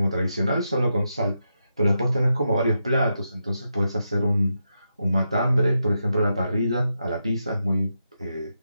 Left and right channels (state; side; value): inverted; both; correlation -0.85